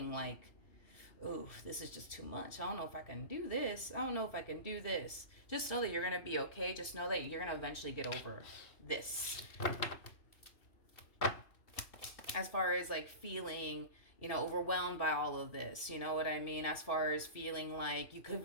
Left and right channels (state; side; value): late; right; 2.6 ms